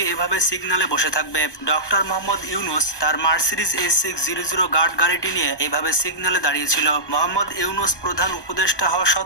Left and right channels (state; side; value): late; right; 1.2 ms